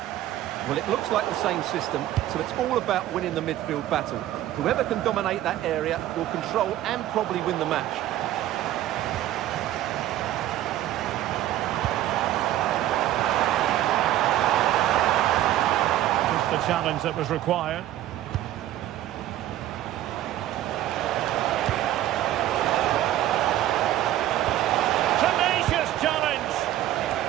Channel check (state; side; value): quieter; left; 13.4 dB